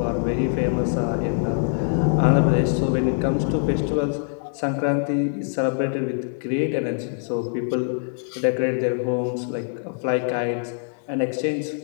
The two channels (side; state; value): right; silent; digital silence